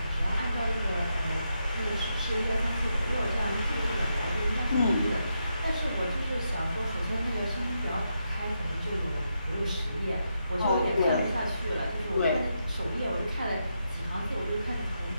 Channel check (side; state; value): both; inverted; correlation -0.83